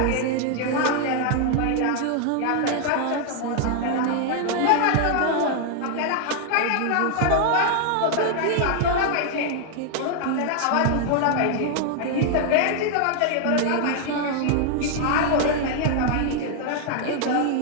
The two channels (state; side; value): different; both; correlation 0.00